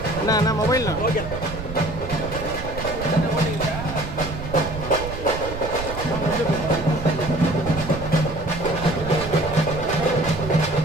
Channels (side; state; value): right; noise; rumble, 9 dB below the sound